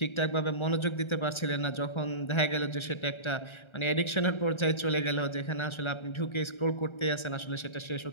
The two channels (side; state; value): right; late; 1.3 ms